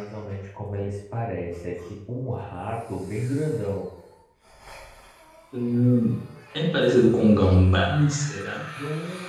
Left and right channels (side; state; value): both; identical; correlation 1.00